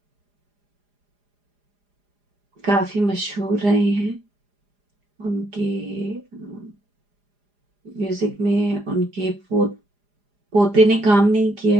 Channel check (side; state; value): left; late; 4.9 ms